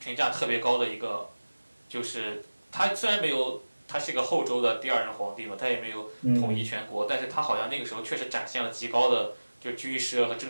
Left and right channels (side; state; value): both; inverted; correlation -1.00